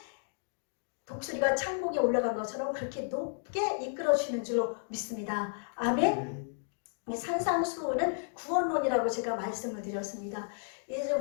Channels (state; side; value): silent; right; digital silence